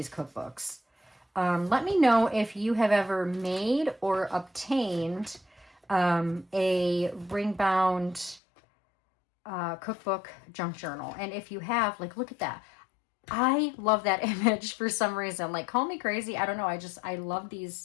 cookbooks. Let me know if you have ever made or obtained a ring-bound cookbook junk journal. And if you have, like, look at that. I love that image for some reason. Like, call me crazy. I don't know. I love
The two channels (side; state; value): right; drops out; at 8.4 s